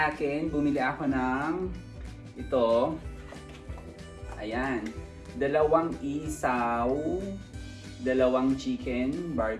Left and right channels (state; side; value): identical; both; correlation 1.00